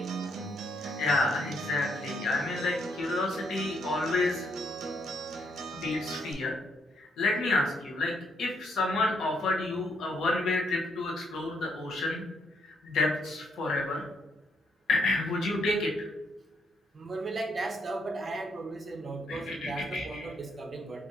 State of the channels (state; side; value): normal; both; correlation 0.74